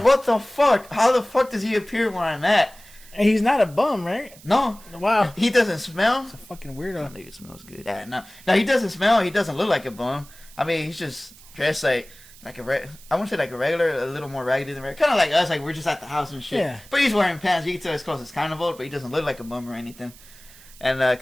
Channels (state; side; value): noise; right; hiss, 22 dB below the sound